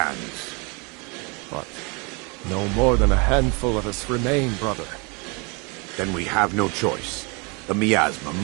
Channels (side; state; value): left; quieter; 31.0 dB